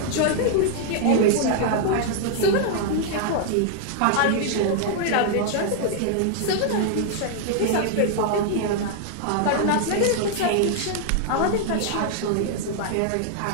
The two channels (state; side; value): different; both; correlation 0.00